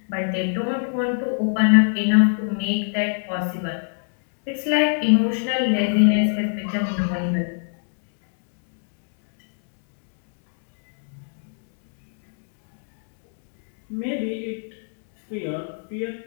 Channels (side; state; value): right; silent; digital silence